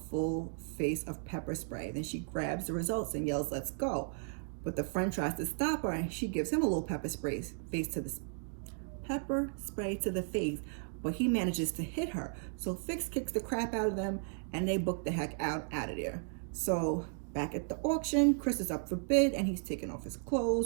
full face of pepper spray. Then she grabs the results and yells, let's go. But the friend tries to stop her, and she gives him a little pepper spray to the face, but he manages to hit her. So Fiks kicks the crap out of them, and they book the heck out of there. So back at the auction, Chris is up for bid, and he's taking off his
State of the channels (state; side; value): silent; left; 54 dB below the other